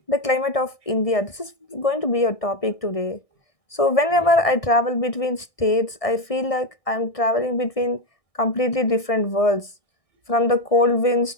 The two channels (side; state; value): right; late; 1.6 ms